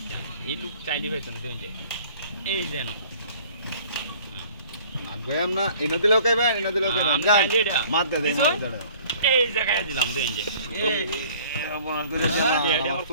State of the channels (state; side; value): inverted; both; correlation -0.52